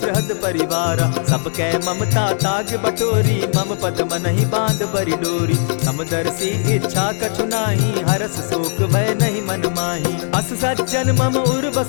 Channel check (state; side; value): silent; right; digital silence